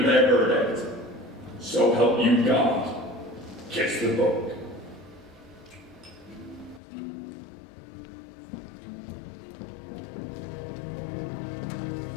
their verdict. So help you God. Kiss the book.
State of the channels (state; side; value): drops out; right; at 6.8 s